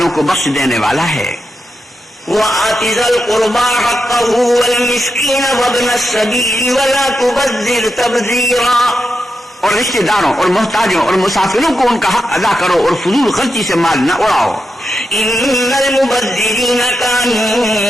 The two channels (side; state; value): both; normal; correlation 0.87